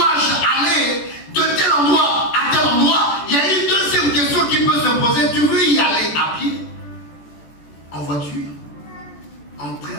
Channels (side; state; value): right; late; 14 ms